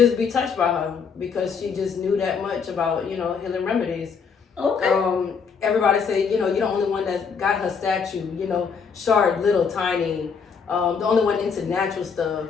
be touched by her, because she just knew that much about, you know, healing remedies. Okay. Everybody say, you know, you're the only one that got her statue, you know, short, little, tiny. The only one into natural stuff,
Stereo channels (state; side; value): quieter; right; 6.0 dB